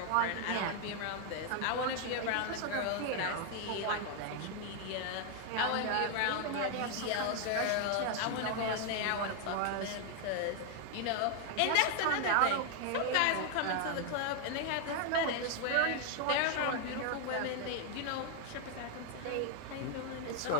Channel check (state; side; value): different; both; correlation 0.00